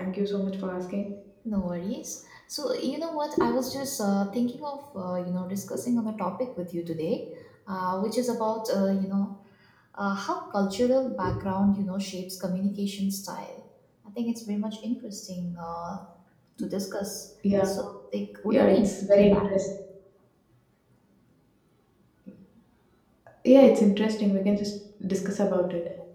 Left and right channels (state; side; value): identical; both; correlation 1.00